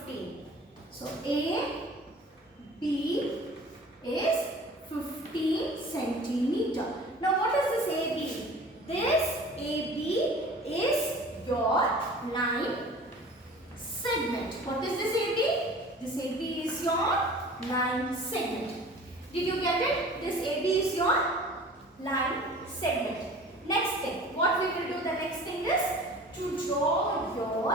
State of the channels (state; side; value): normal; both; correlation 0.43